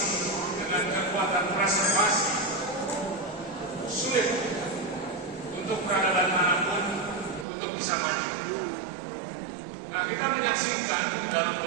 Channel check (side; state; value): left; drops out; at 7.5 s